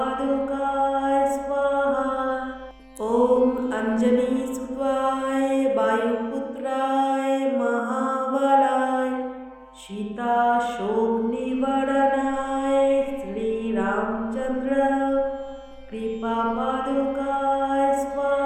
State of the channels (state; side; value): identical; both; correlation 1.00